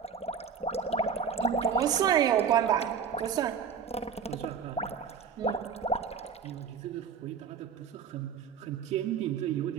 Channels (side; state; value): left; quieter; 7.0 dB